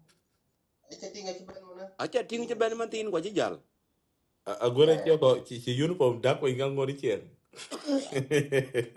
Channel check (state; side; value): identical; both; correlation 1.00